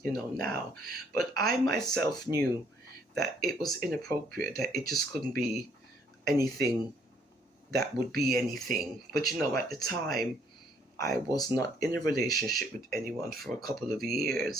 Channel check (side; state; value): both; normal; correlation 0.65